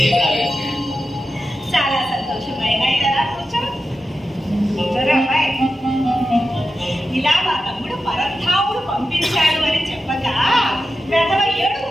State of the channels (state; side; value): normal; both; correlation 0.92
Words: చాలా సంతోషమైన కదా. కూర్చోరా అమ్మాయి. ఇలా మా తమ్ముడు పరంధాముడు పంపించాడు అని చెప్పగా వెధవ ఏడుగు